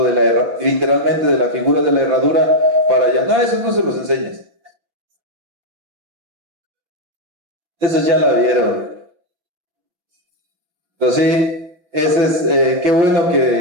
literalmente de la figura de la herradura para allá. No, eso no se los enseñes. Esos ya la vieron. Pero sí, ese es, qué bueno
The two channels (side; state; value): left; late; 6.1 ms